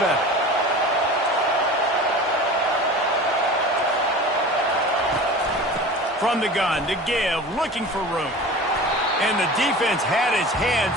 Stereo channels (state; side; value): normal; both; correlation 0.37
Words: From the gun to give, looking for room. And the defense had his hands